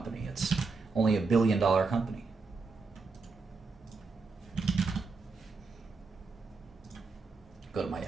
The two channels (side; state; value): left; quieter; 4.2 dB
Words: It's only $1 billion company. Go to my